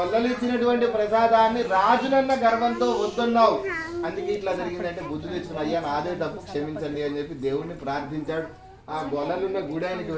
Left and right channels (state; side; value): identical; both; correlation 1.00